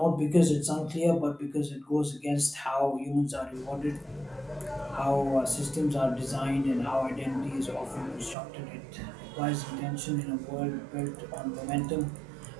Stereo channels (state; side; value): drops out; left; at 8.3 s